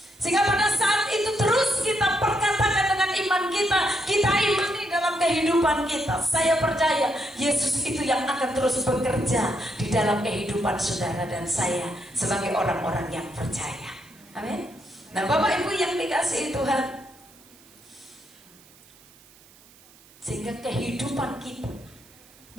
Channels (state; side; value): noise; right; hiss, 26 dB below the sound